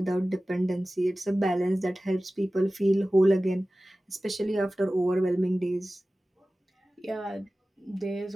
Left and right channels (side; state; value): both; normal; correlation 0.96